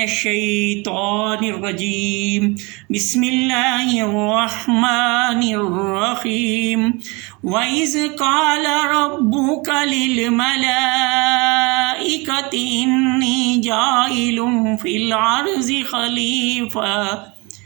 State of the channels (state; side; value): quieter; left; 27.2 dB